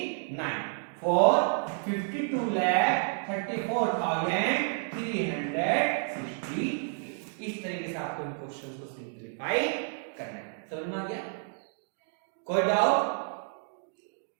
फोर्थ 52,34,360। इस तरीके से आपको इन क्वेश्चंस को सिंपलीफाई करना है। समझ में आ गया? कोई डाउट,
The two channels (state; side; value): silent; left; 58 dB below the other